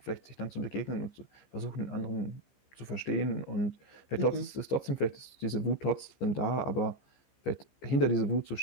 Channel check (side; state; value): right; late; 15 ms